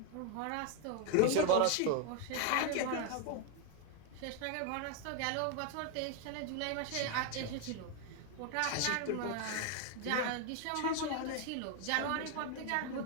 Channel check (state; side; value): different; both; correlation 0.01